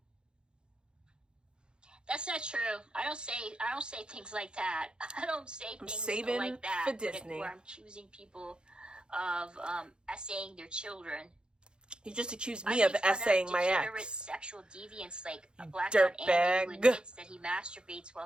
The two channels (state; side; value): late; left; 0.049 ms